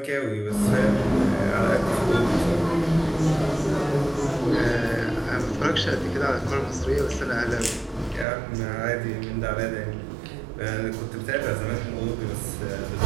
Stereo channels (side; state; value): left; drops out; at 8.2 s